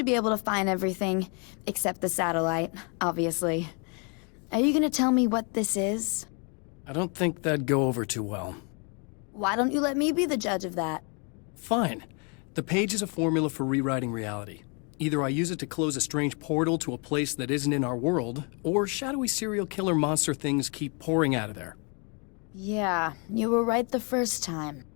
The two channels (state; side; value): quieter; right; 35.4 dB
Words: be able to find everything, except the satellite, obviously. Are you gonna tell me what this is? I don't think that'd go over too well. Why don't you let me be the judge of that? Fine. The page is a formula for rewriting reality. Either I use it to close a strange portal to a place that isn't in our world, or shadowy serial killer monster things keep pouring out of there. Yeah, you were right the first time.